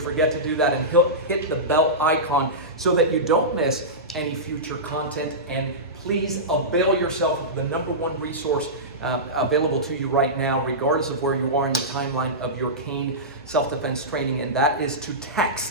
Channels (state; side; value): normal; both; correlation -0.16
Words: to do that, and hit the bell icon so that you don't miss any future content. And please avail yourself of the #1 resource available to you right now, regardless of where you are in the timeline of your cane self-defense training, and that is to